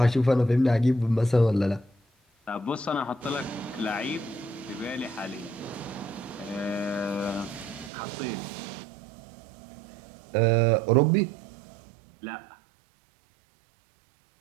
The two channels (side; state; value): left; drops out; at 7.9 s